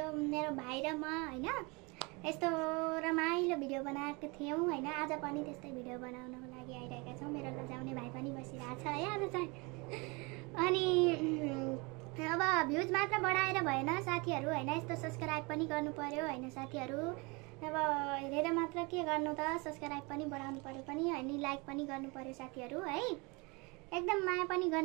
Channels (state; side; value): quieter; left; 28.1 dB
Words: मेरो भाइ र म हैन यस्तो रमाइलो भिडियो बनाएको थियौं हैन। आज पनि त्यस्तै भिडियो बनाउनको लागि आइरहेका छौं। मेरो लजाउने भाइ पनि बसिरहेछ है आज चाहिँ। अनि अब भ्युज मात्र बढाएर भएन साथीहरु हैन, यस्तो सब्स्क्राइब पनि गर्नु पर्यो हैन साथीहरु। अब हेरेर मात्र के गर्नु त, सब्स्क्राइब पनि बढाउनु पर्यो पनि अनि लाइक पनि गर्नु पर्यो साथीहरु है। एकदम माया पनि